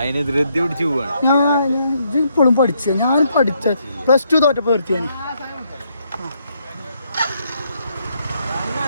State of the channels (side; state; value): both; inverted; correlation -0.74